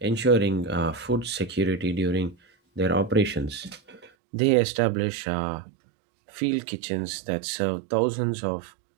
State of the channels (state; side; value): drops out; left; at 4.1 s